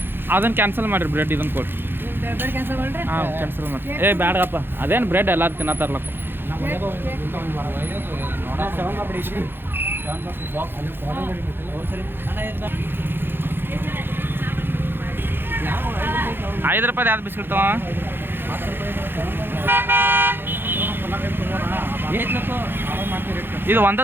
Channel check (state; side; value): late; left; 0.10 ms